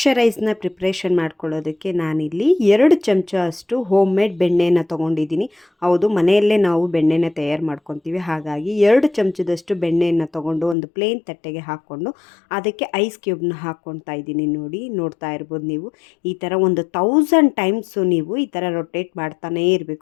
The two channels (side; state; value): right; drops out; at 10.8 s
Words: ಪ್ರಿಪ್ರೇಷನ್ ಮಾಡ್ಕೊಳ್ಳೋದಕ್ಕೆ ನಾನಿಲ್ಲಿ 2 ಚಮಚ ಅಷ್ಟು ಹೋಮ್ ಮೇಡ್ ಬೆಣ್ಣೆನ ತೊಗೊಂಡಿದ್ದೀನಿ. ಹೌದು, ಮನೆಯಲ್ಲೇ ನಾವು ಬೆಣ್ಣೆನ ತಯಾರು ಮಾಡ್ಕೊತೀವಿ. ಹಾಗಾಗಿ 2 ಚಮಚದಷ್ಟು ಬೆಣ್ಣೆಯನ್ನು ತೊಗೊಂಡು ಒಂದು ಪ್ಲೇನ್ ತಟ್ಟೆಗೆ ಹಾಕ್ಕೊಂಡು ಅದಕ್ಕೆ ಐಸ್ ಕ್ಯೂಬ್ನ ಹಾಕ್ಕೊಳ್ತಾ ಇದ್ದೀನಿ ನೋಡಿ. ನೋಡ್ತಾ ಇರ್ಬೋದು ನೀವು, ಈ ಥರ ಒಂದು 1000 ಟೈಮ್ಸು ನೀವು ಈ ಥರ ರೊಟೇಟ್ ಮಾಡ್ತಾನೇ